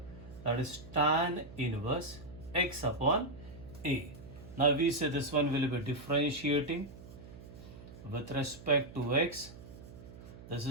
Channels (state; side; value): noise; right; hum, 16 dB below the sound